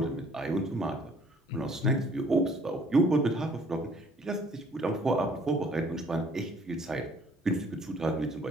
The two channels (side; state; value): both; normal; correlation 0.59